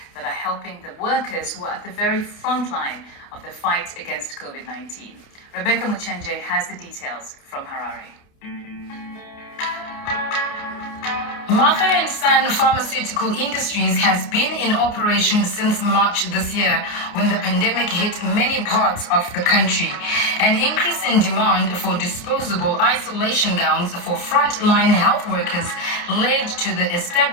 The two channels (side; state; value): right; late; 29 ms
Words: that are helping the workers who are at the very front line of the fight against COVID-19. Rebecca Muchenje has the details from Harare. Martha & Son Pharmaceutical Industries has been in operation since March this year, when the pandemic hit many parts of the country. An increase in demand for disposable isolation gowns for frontline health workers led to the